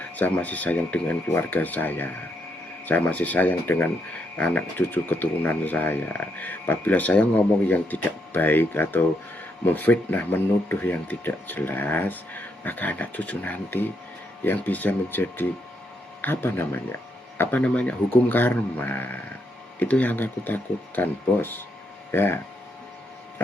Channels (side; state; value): both; normal; correlation 0.78